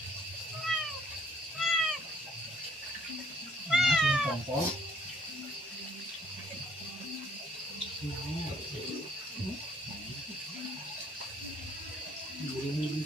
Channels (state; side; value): normal; both; correlation 0.62